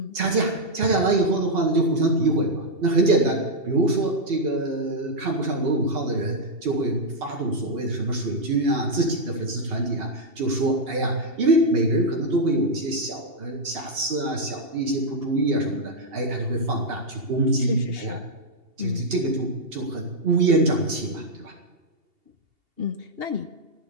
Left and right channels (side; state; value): left; late; 2.8 ms